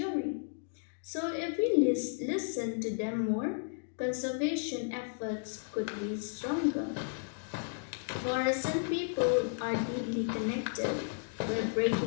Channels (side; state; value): right; silent; digital silence